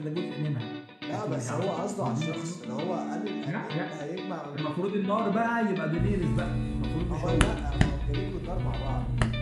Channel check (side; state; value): both; identical; correlation 1.00